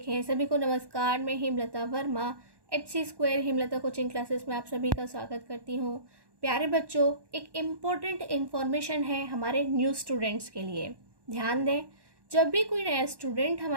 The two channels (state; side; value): late; left; 1.1 ms